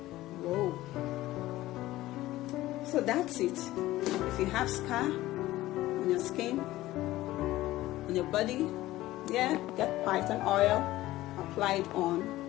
Whoa. So that's it. If you have scar on your skin, on your body, yeah, get phython oil, apply it on,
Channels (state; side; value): quieter; right; 16.4 dB